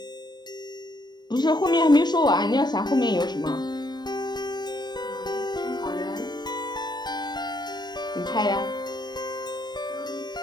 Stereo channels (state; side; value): late; right; 0.21 ms